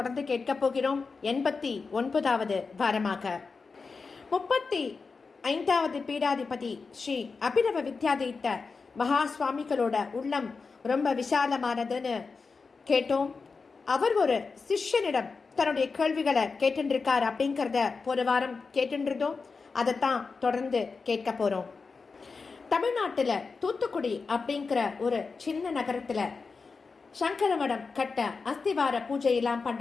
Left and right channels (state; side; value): quieter; right; 4.6 dB